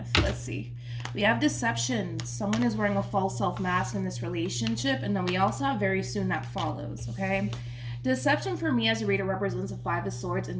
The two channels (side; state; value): both; identical; correlation 1.00